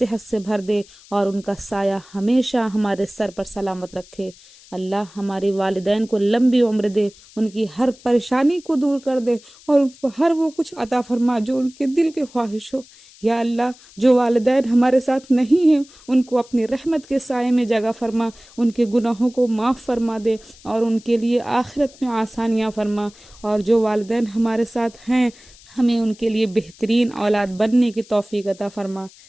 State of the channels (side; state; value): left; noise; hiss, 24 dB below the sound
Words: سے بھر دے، اور ان کا سایہ ہمیشہ ہمارے سر پر سلامت رکھے۔ اللہ ہمارے والدین کو لمبی عمر دے، ان کی ہر پریشانی کو دور کر دے اور ان کو ہر وہ کچھ عطا فرما جو ان کے دل کے خواہش ہو۔ یا اللہ جو والدین ہمارے ساتھ نہیں ہیں ان کو اپنی رحمت کے سائے میں جگہ فرما، ان کے گناہوں کو معاف فرما دے اور ان کے لیے آخرت میں آسانیاں فرما، اور جو والدین ہمارے ساتھ ہیں ہمیں ان کے لیے بہترین اولاد بننے کی توفیق عطا فرما،